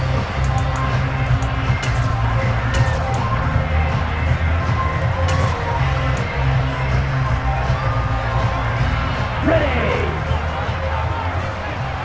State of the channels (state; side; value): identical; both; correlation 1.00